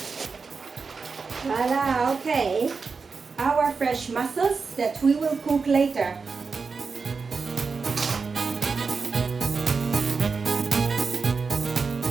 Voila, okay. Our fresh mussels that we will cook later.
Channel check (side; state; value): left; quieter; 4.8 dB